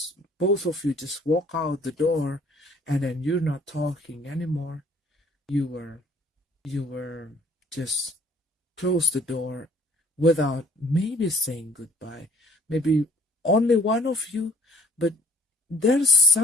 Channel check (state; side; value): normal; both; correlation 0.55